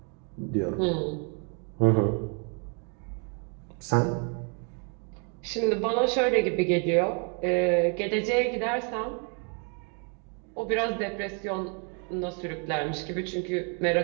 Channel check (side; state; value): left; quieter; 38.6 dB